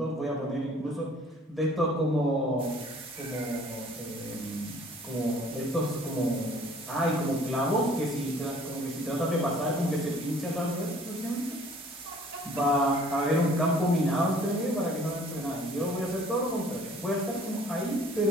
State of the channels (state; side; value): normal; both; correlation 0.55